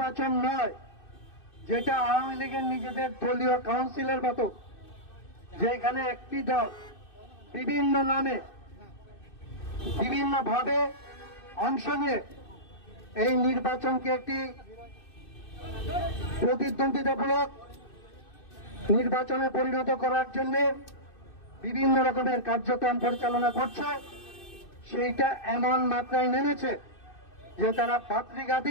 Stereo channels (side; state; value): right; late; 2.6 ms